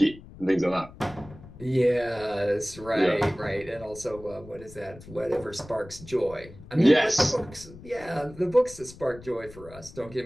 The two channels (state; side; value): noise; left; rumble, 18 dB below the sound